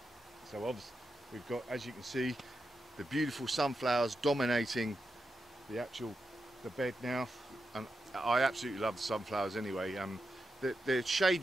So obviously we've got, as you can see, the beautiful sunflowers dominating the bed now. and I absolutely love the sunflowers anyway. They're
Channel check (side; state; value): both; normal; correlation 0.88